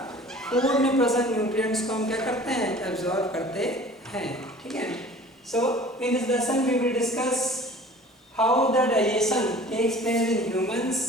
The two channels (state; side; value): normal; both; correlation 0.45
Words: फूड में प्रेजेंट न्यूट्रिएंट्स को हम क्या करते हैं? एब्जॉर्ब करते हैं। ठीक है। So in this lesson we will discuss how the digestion takes place in humans